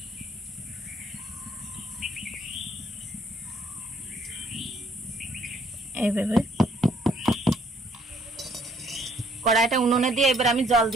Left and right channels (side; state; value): both; normal; correlation 0.64